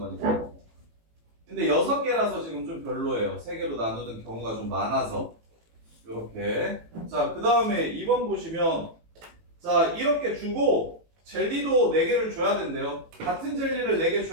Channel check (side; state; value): left; late; 18 ms